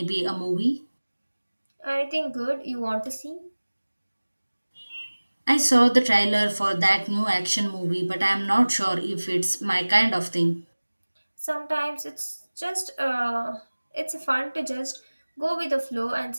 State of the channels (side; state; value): both; inverted; correlation -1.00